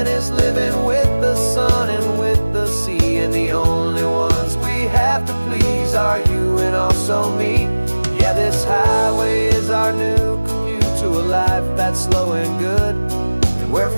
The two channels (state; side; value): inverted; both; correlation -1.00